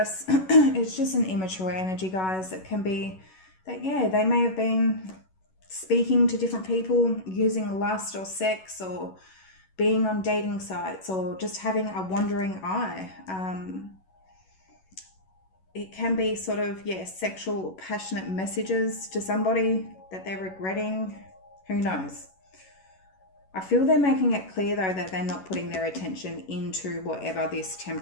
It's just an immature energy, guys. It can be that, yeah, they may have been speaking to different people, using lust or sex, or being on dating sites, or just having a wandering eye. It can be sort of, yeah, sexual, passionate messages to somebody that they're regretting. Who knows? I feel they're making it clear, though, that they're not putting their attention into whatever this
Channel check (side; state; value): right; late; 11 ms